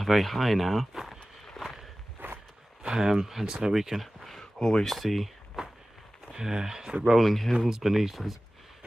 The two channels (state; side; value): normal; both; correlation 0.97